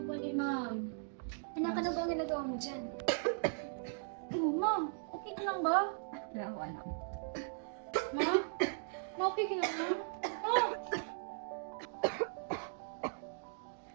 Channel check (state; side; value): silent; left; digital silence